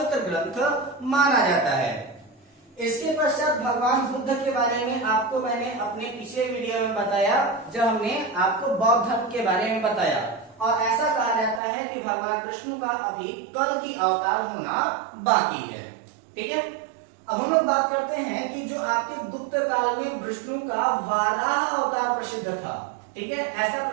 ग्रंथ माना जाता है। इसके पश्चात भगवान बुद्ध के बारे में आपको मैंने अपने पिछले वीडियो में बताया, जब हमने आपको बौद्ध धर्म के बारे में बताया, और ऐसा कहा जाता है कि भगवान विष्णु का अभी कल की अवतार होना बाकी है। ठीक है, अब हम लोग बात करते हैं कि जो आपके गुप्त काल में विष्णु का वाराह अवतार प्रसिद्ध था। ठीक है, ऐसा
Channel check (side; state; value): left; drops out; at 11.6 s